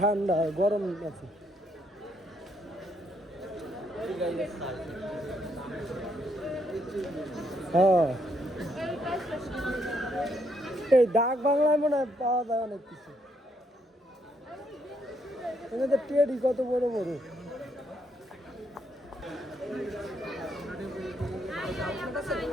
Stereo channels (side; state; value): both; normal; correlation 0.74